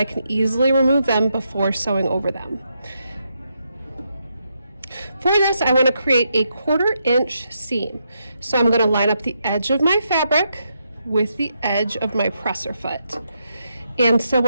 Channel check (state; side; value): inverted; both; correlation -0.81